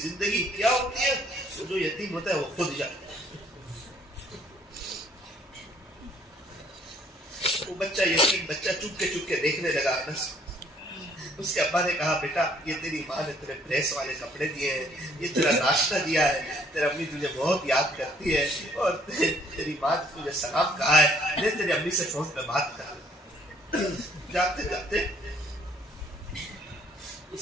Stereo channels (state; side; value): normal; both; correlation 0.62